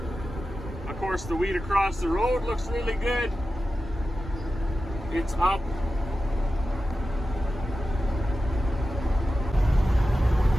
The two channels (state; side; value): normal; both; correlation 0.93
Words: Of course, the wheat across the road looks really good. It's up.